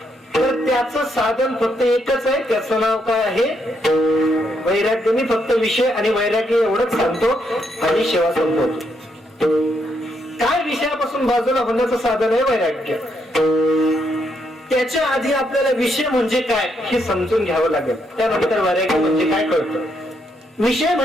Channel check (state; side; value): normal; both; correlation 0.77